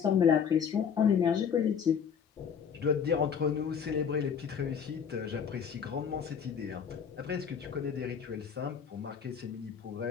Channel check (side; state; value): right; quieter; 7.2 dB